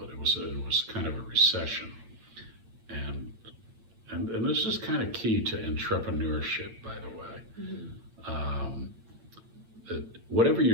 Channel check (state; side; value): late; left; 8.8 ms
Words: it was kind of a recession, and this is kind of key to entrepreneurship, by the way. That whatever